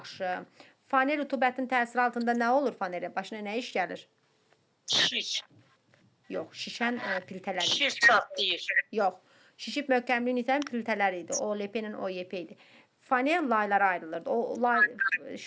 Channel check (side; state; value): both; identical; correlation 1.00